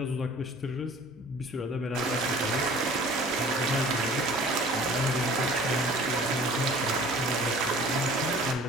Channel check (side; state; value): both; normal; correlation 0.48